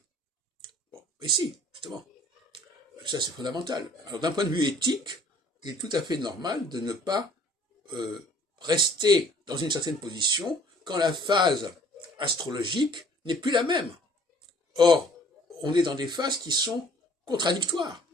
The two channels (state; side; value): normal; both; correlation 0.55